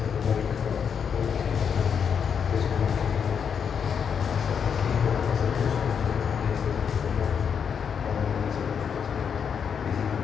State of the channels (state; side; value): quieter; right; 7.1 dB